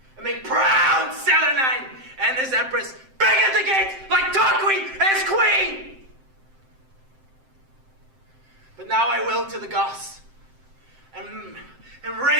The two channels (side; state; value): left; late; 7.7 ms